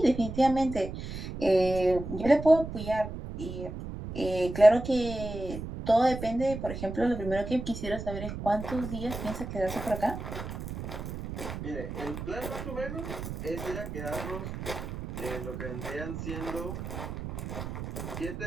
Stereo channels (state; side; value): noise; right; rumble, 7 dB below the sound